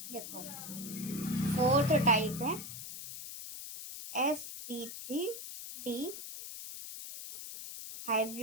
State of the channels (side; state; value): left; noise; hiss, 9 dB below the sound